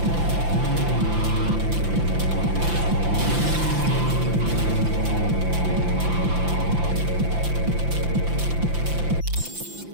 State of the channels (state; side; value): late; left; 5.9 ms